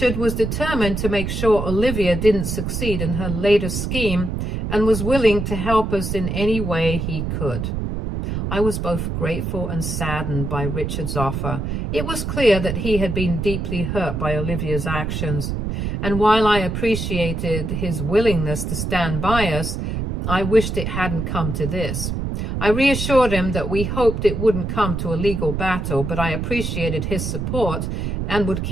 was determined to make sure Olivia didn't succeed in her latest scheme and was willing to help us in any way he could. I was both grateful and saddened by Richard's offer. It was clear that he had been deeply hurt by Olivia's actions, and while I appreciated his willingness to stand by us, I wished it hadn't come to this. I reassured him that we hoped it wouldn't come to a legal battle, but I appreciated his support and would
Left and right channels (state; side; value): noise; right; rumble, 3 dB below the sound